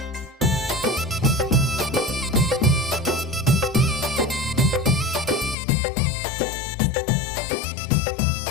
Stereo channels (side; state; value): right; drops out; at 5.6 s